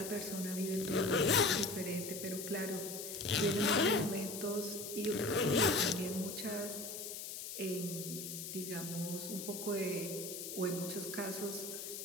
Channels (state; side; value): noise; left; hiss, 7 dB below the sound